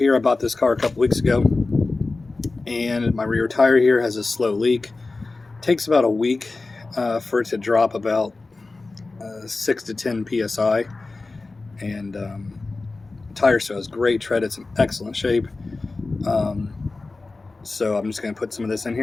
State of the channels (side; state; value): right; quieter; 3.5 dB